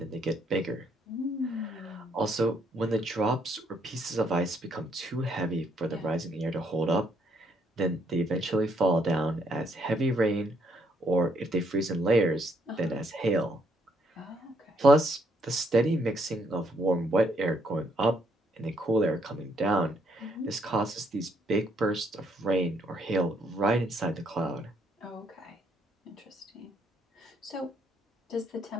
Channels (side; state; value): both; normal; correlation 0.71